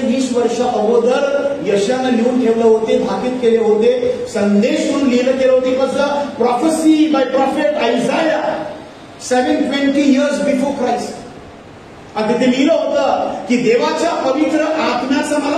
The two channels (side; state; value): both; identical; correlation 1.00